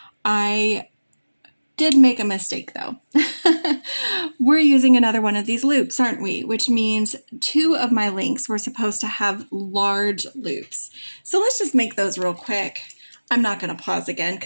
I did make a mistake though. We're using another one of these loops, aren't we? Which means 2 of my links were supposed to have large loops. So let's just make those real quick. I'm not going to pause again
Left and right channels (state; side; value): inverted; both; correlation -1.00